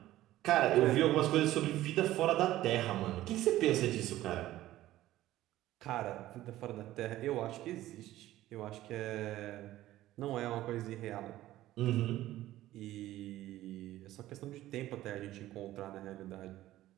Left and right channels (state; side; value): quieter; left; 14.9 dB